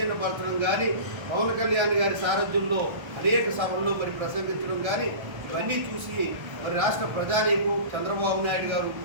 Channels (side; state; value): left; late; 1.3 ms